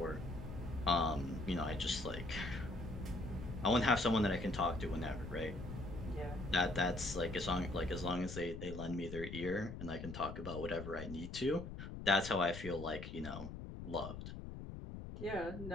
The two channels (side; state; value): left; noise; rumble, 9 dB below the sound